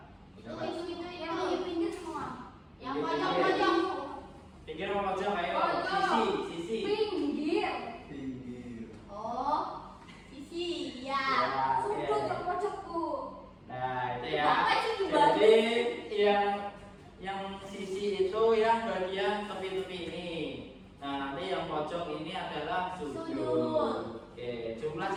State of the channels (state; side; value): identical; both; correlation 1.00